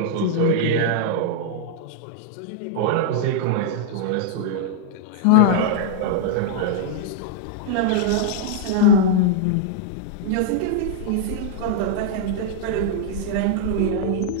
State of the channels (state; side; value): different; both; correlation -0.01